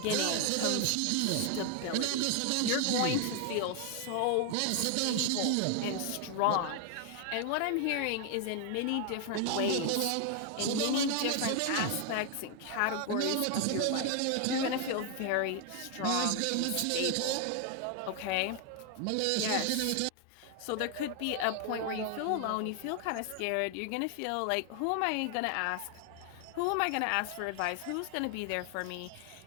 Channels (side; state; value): both; different; correlation 0.00